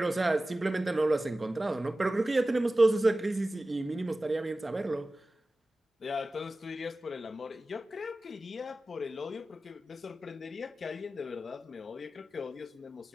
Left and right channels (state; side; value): normal; both; correlation 0.96